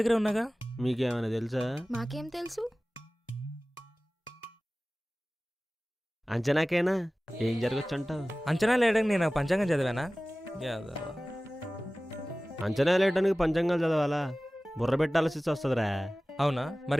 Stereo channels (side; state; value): both; normal; correlation 0.97